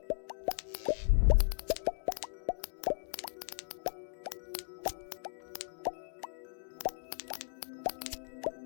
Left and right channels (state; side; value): silent; right; digital silence